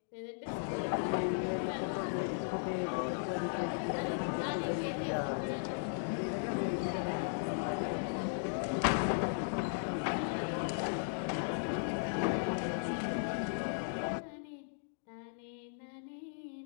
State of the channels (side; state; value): right; silent; digital silence